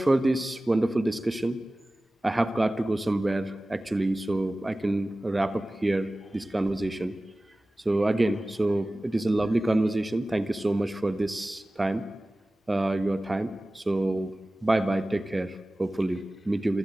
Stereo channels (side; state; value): both; normal; correlation 0.97